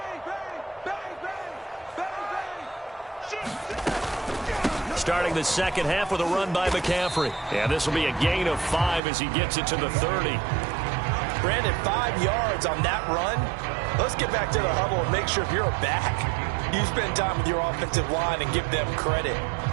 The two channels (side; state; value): left; drops out; at 9.0 s